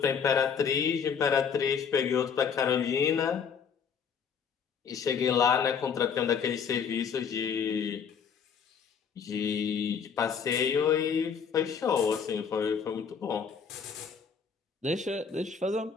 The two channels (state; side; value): quieter; right; 6.7 dB